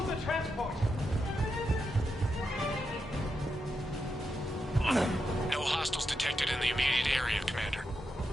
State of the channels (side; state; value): both; normal; correlation 0.85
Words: the transport! No hostiles detected in the immediate area, Commander.